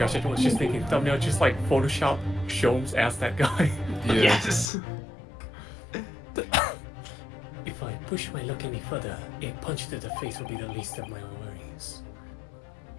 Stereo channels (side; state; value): right; drops out; at 4.7 s